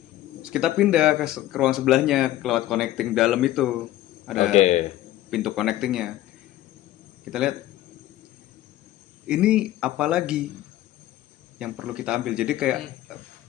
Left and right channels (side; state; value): right; quieter; 14.4 dB